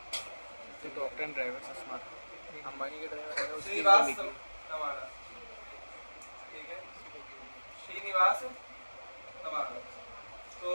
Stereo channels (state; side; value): inverted; both; correlation -1.00